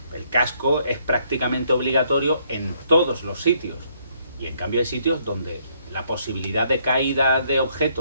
El casco es prácticamente obligatorio en todos los sitios. Y en cambio hay sitios donde la posibilidad de caída de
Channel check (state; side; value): inverted; both; correlation -0.69